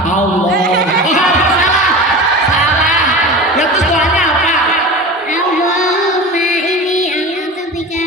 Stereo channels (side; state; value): both; normal; correlation 0.32